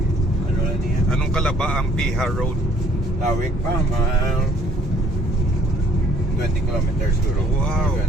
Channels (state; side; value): normal; both; correlation 0.60